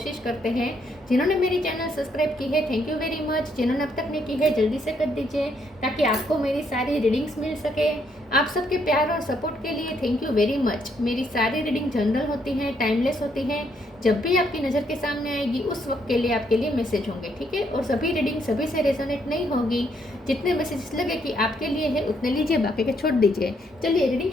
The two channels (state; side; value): normal; both; correlation 0.73